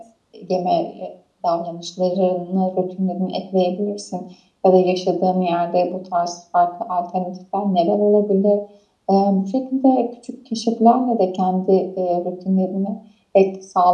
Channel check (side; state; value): both; identical; correlation 1.00